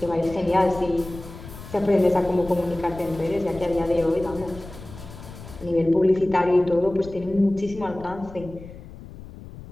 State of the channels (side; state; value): left; noise; rumble, 15 dB below the sound